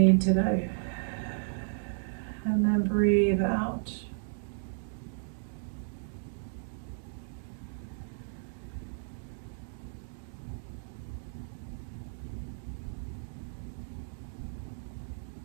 today? And then breathe out.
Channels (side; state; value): left; silent; digital silence